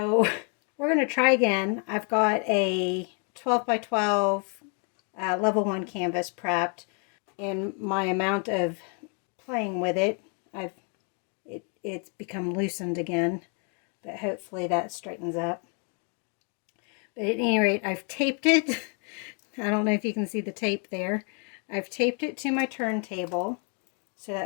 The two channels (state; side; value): quieter; right; 39.3 dB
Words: we're going to try again. I've got a 12 by 12 level 1 canvas prepped, and my amount of playing with it, it's become loosened again, but hopefully that straightens up. But at any rate, I've taped it. I don't know if you can see the tape there. I've taped it to my turntable so